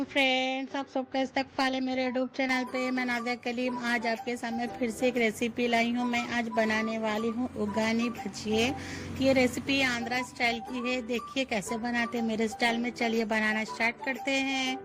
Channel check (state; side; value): identical; both; correlation 1.00